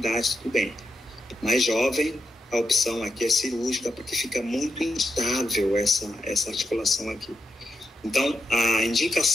tudo bem. Mais jovem, a opção aqui é cirúrgica, porque fica muito instável essa articulação aqui. Então, a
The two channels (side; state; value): both; normal; correlation 0.84